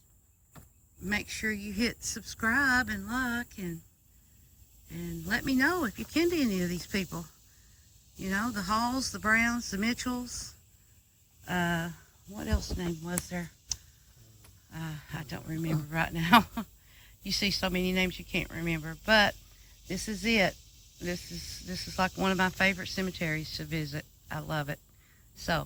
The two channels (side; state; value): both; identical; correlation 1.00